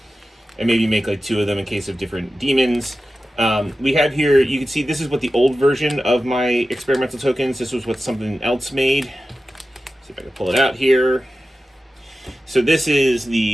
and maybe make like 2 of them in case of different demons. We have here, you can see this is what the old version of my experimental tokens, this was what something else made. See if I can pull it out here. So this is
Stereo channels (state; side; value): normal; both; correlation 0.93